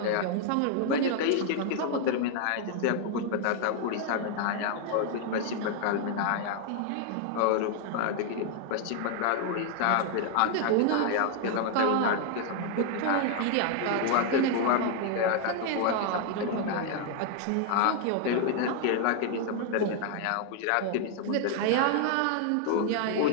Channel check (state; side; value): different; both; correlation 0.00